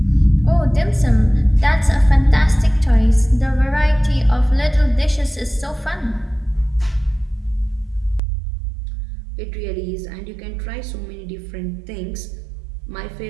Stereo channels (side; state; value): left; drops out; at 8.2 s